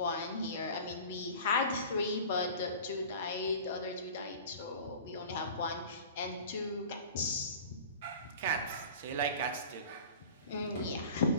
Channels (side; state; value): both; inverted; correlation -0.39